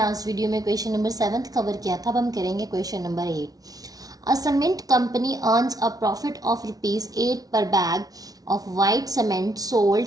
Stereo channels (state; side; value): late; left; 0.18 ms